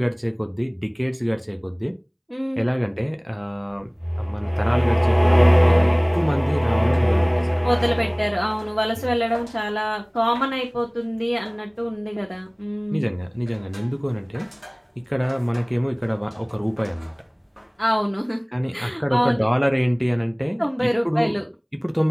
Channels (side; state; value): both; identical; correlation 1.00